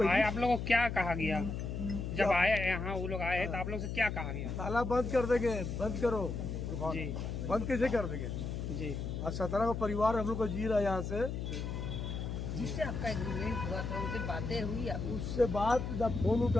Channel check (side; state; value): left; noise; hum, 4 dB below the sound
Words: आए आप लोगों को क्या कहा गया? जब आए यहाँ वो लोग आए तो आप लोग से क्या कहा गया? ताला बंद कर देंगे, बंद करो। जी बंद कैसे कर देंगे? जी। आज 17 का परिवार हम लोग को जी रहा है यहाँ से। जिससे आपका एग्रीमेंट हुआ था उनसे बातें हुई आपकी? उससे बात ना फोन